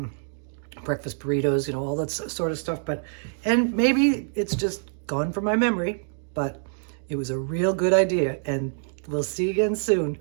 burritos, you know, all that sort of stuff. And maybe it's just gone from my memory, but it was a real good idea, and we'll see you again soon.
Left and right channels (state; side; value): silent; left; digital silence